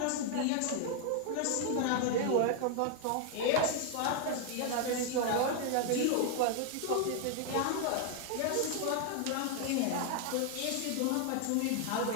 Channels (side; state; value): both; different; correlation 0.00